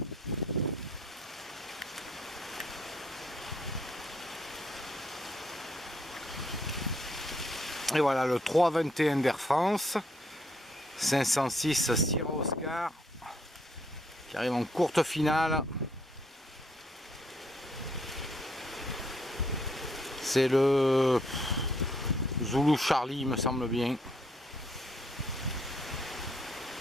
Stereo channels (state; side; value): normal; both; correlation 0.70